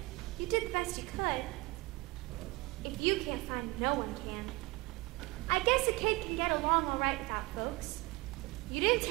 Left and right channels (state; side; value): quieter; left; 23.3 dB